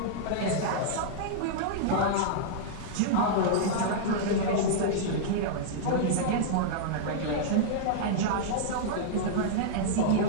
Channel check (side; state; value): both; different; correlation -0.02